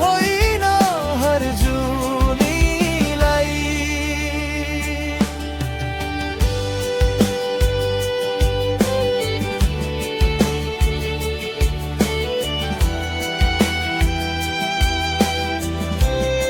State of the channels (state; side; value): identical; both; correlation 1.00